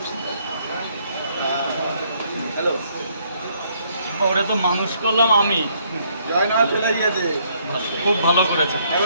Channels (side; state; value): both; inverted; correlation -0.68